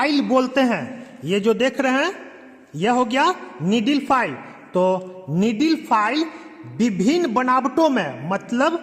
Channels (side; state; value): both; identical; correlation 1.00